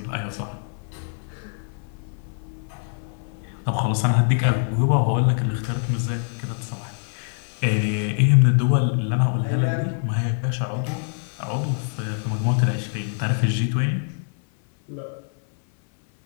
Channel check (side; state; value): right; silent; 57 dB below the other